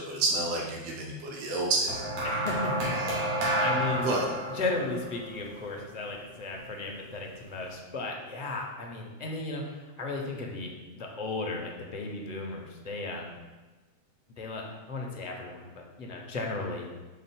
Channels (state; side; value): late; left; 7.9 ms